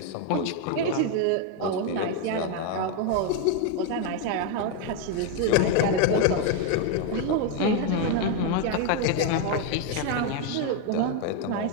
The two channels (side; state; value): both; different; correlation 0.02